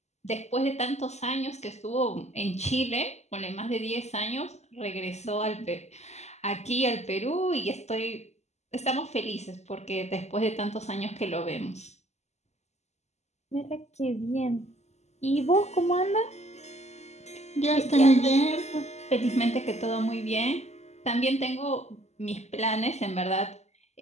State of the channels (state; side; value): late; right; 0.33 ms